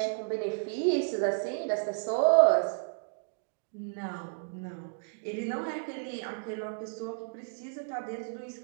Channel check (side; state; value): left; silent; digital silence